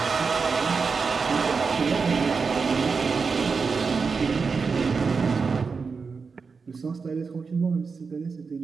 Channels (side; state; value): left; quieter; 5.0 dB